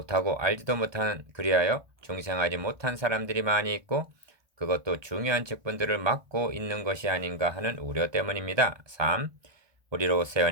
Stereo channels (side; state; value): left; late; 1.2 ms